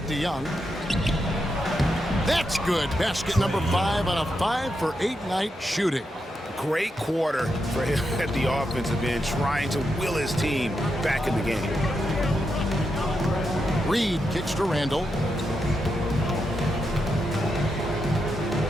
to Young. That's good. Basket number 5 on a 5 for 8 night shooting. Great quarter for him at the offensive end, trying to will his team back in the game. Reed kicks to Randall.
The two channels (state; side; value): normal; both; correlation 0.85